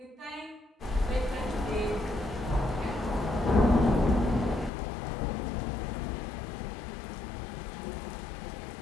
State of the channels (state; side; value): drops out; right; at 4.7 s